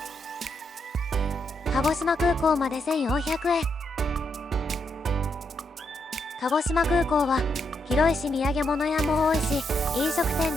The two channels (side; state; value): both; normal; correlation 0.80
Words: 鹿児島空港まで1400円。鹿児島空港は広いし土産物屋も多いし、飲食店